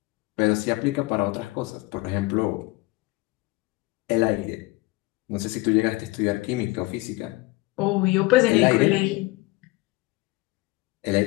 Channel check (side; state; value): right; quieter; 21.8 dB